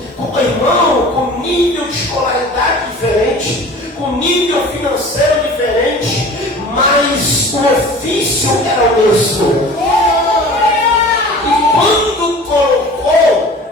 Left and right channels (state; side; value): normal; both; correlation 0.42